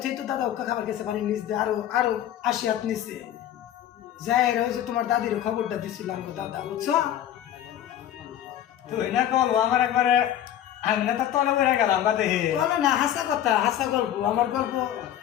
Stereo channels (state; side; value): quieter; right; 11.3 dB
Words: তুই তো দাদা ওকা খাবার গেছে পানি নিচ দিয়ে আরো 80 হাত নিচে যায় রে ওই যে তোমার দাদির খবরটা দিছিল আমার দাদা বুঝছো তুই না বলবো আমার একবারে আমি না তো তলে পড়ে গেলাম বা দেখি বলো না হাসা কথা হাসা গল্প আমার গল্প